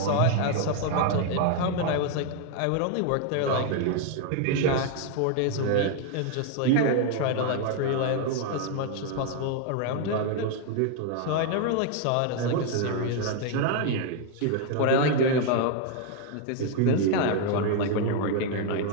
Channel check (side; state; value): both; different; correlation 0.00